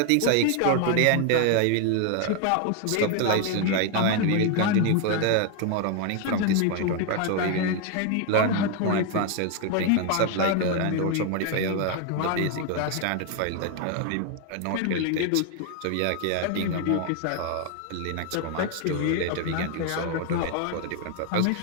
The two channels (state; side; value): different; both; correlation 0.01